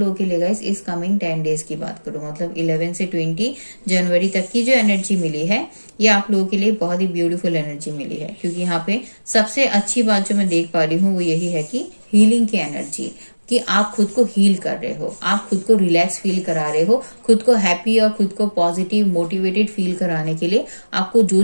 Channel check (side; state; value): both; inverted; correlation -1.00